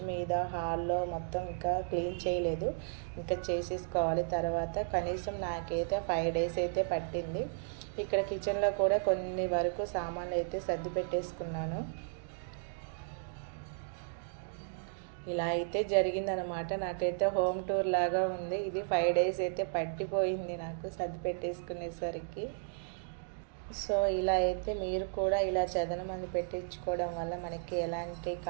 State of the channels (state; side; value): silent; left; digital silence